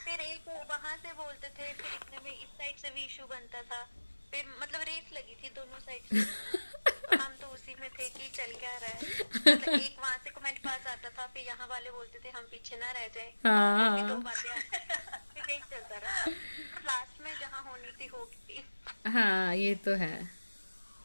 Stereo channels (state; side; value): inverted; both; correlation -1.00